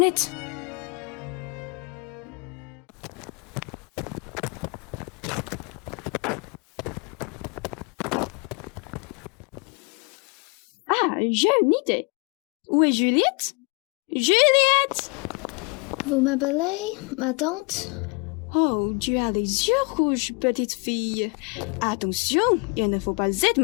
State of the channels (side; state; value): right; quieter; 31.7 dB